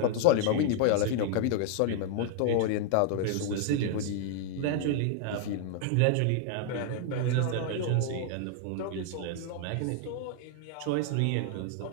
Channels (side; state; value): both; different; correlation 0.00